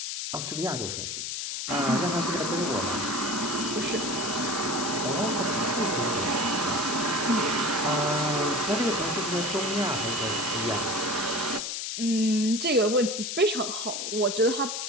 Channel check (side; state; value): left; noise; hiss, 4 dB below the sound